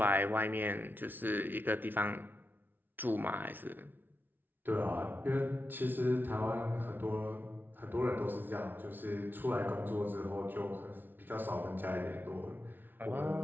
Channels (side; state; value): left; late; 0.092 ms